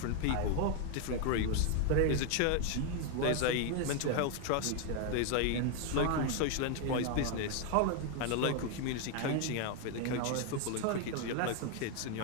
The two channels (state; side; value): different; both; correlation 0.01